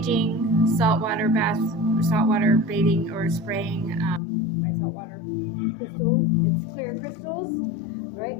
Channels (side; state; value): right; drops out; at 4.2 s